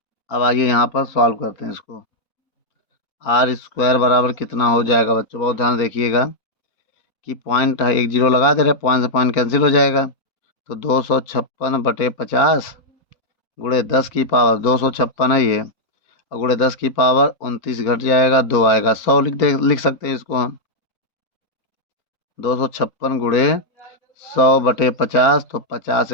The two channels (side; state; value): right; late; 4.4 ms